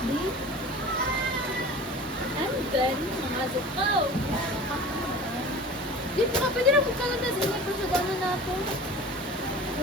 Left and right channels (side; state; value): both; normal; correlation 0.39